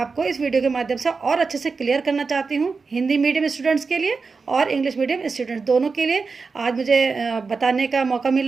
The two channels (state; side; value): quieter; left; 4.6 dB